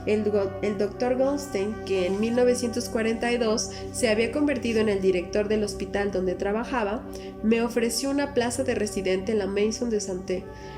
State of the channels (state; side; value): identical; both; correlation 1.00